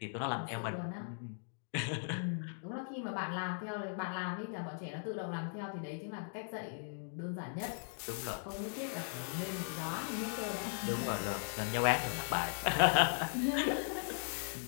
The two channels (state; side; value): silent; right; digital silence